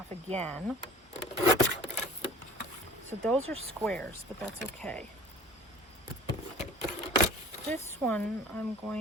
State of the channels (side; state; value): both; normal; correlation 0.44